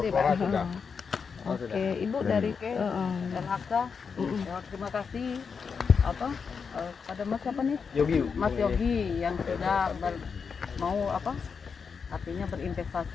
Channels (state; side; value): quieter; right; 5.8 dB